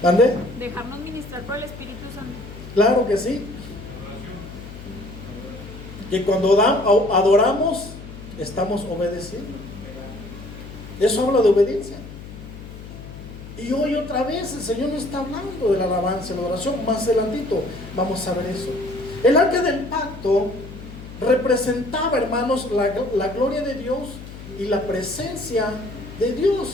¿Dónde? Dejarnos ministrar por el Espíritu Santo. Claro que sí. Que cuando adoramos, estamos obedeciendo. Eso habla de obediencia. Y hoy otra vez el Señor nos está hablando de la alabanza, de la oración. Más adelantito vamos a ver eso. El arca del pacto representaba, hermanos, la gloria de Dios y la presencia de Dios.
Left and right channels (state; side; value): noise; left; hum, 14 dB below the sound